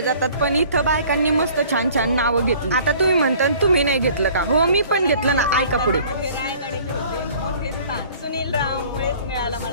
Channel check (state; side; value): inverted; both; correlation -0.51